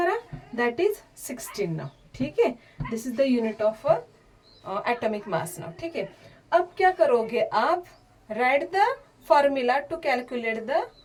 दैट इज 16 नाउ, ठीक है. This is the unit of atomic mass now, ठीक है. अब क्या करोगे आप, write the formula to calculate the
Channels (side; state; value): both; identical; correlation 1.00